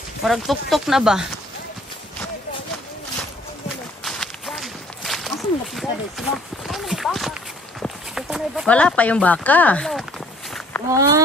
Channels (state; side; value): normal; both; correlation 0.59